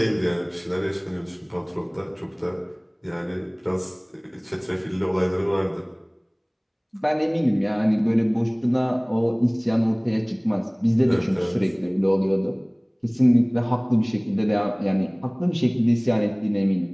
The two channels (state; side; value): identical; both; correlation 1.00